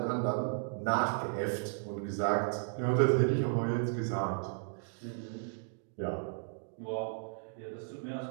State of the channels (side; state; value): left; silent; digital silence